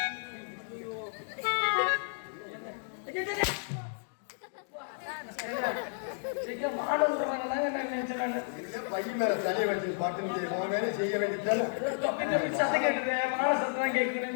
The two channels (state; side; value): silent; right; digital silence